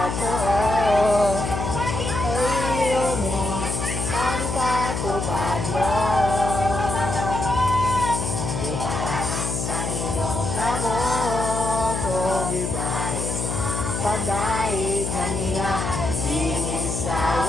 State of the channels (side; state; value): left; noise; hum, 3 dB below the sound